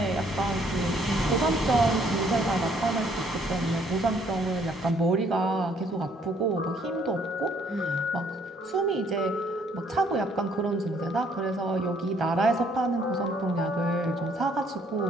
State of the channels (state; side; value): normal; both; correlation 0.65